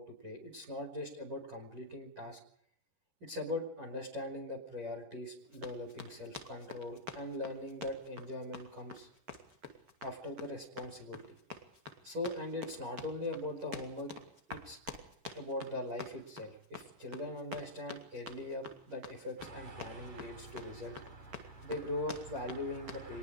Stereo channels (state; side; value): late; left; 11 ms